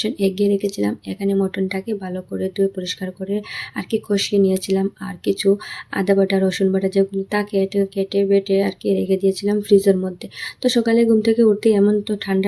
এগিয়ে রেখেছিলাম। এখানে মটনটাকে ভালো করে ধুয়ে পরিষ্কার করে কষিয়ে নিয়েছিলাম। আর কিছু আদা বাটা, রসুন বাটা যেগুলো থাকে এটা কেটে বেটে রেখে দিয়েছিলাম ফ্রিজের মধ্যে। তো সকালে ঘুম থেকে উঠতেই, এমন তো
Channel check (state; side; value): identical; both; correlation 1.00